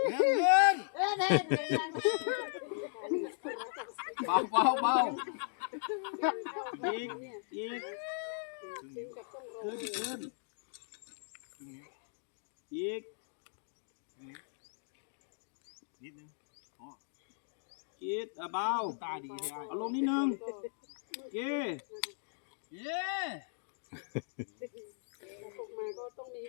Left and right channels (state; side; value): silent; right; digital silence